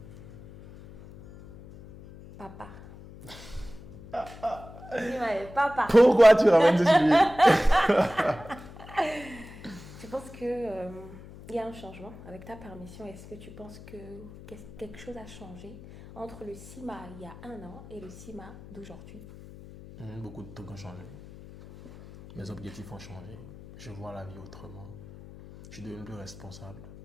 Papa. Ouais, papa. Pourquoi tu ramènes ce sujet? Tu penses que il y a un changement avec ta permission? Est-ce que tu penses que quelque chose a changé entre le Sima il y a 1 an et le Sima d'aujourd'hui? Beaucoup de trucs ont changé. Mes objectifs ont changé. Je vois la vie autrement. Je suis devenu plus responsable.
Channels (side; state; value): left; noise; hum, 17 dB below the sound